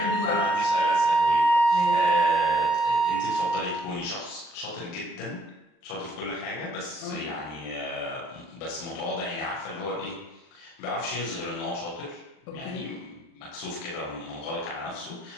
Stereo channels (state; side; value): late; right; 39 ms